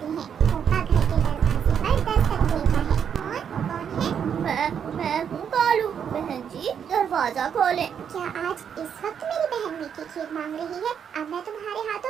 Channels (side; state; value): left; quieter; 7.9 dB